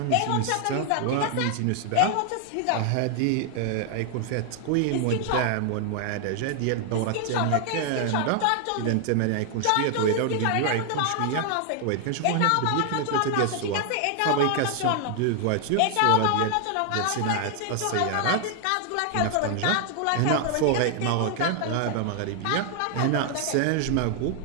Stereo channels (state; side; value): different; both; correlation 0.00